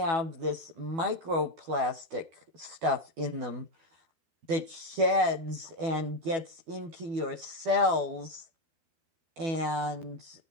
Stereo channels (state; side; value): late; left; 12 ms